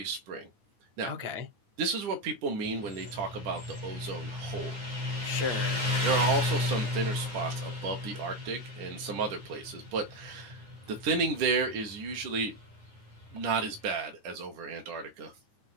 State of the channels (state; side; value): late; left; 9.4 ms